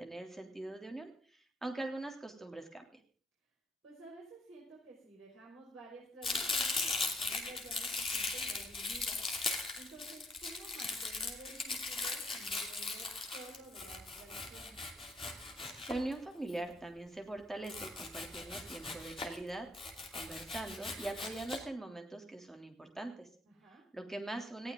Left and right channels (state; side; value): normal; both; correlation 0.68